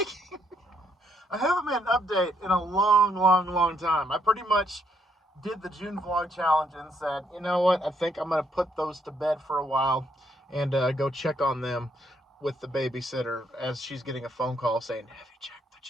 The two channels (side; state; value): both; normal; correlation 0.73